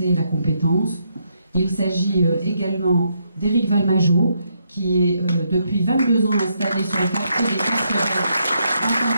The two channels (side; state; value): both; inverted; correlation -0.77